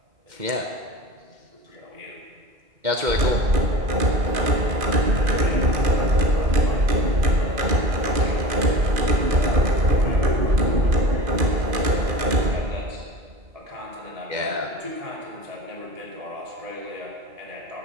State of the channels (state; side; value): late; left; 2.5 ms